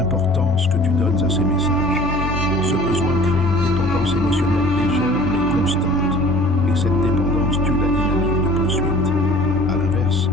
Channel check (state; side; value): normal; both; correlation 0.47